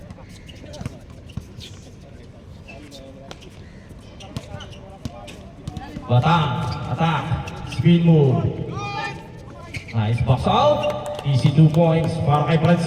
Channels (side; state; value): both; identical; correlation 1.00